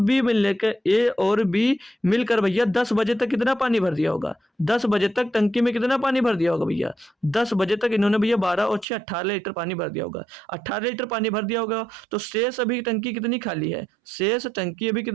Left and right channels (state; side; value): drops out; left; at 8.8 s